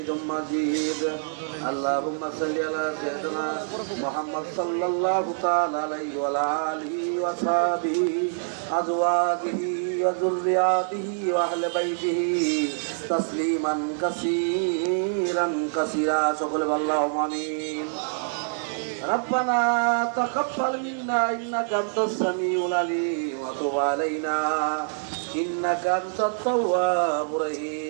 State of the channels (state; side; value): silent; left; digital silence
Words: اللهم صل على سيدنا محمد صلى الله تعالى عليه وعلى آله وصحبه أزواجه وذرياته وأهل بيته تسليما كثيرا كثيرا شكر اللهم آمين ربنا تقبل منا إنك أنت السميع العليم وتب علينا إنك أنت التواب